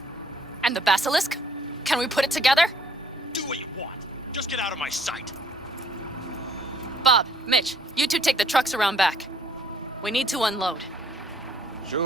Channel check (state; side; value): normal; both; correlation 0.62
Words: And the basilisk? Can we put it together? Do what you want. Just get out of my sight. Bob, Mitch, you two take the trucks around back. We need to unload.